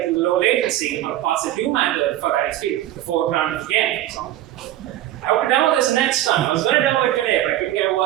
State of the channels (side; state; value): left; quieter; 13.7 dB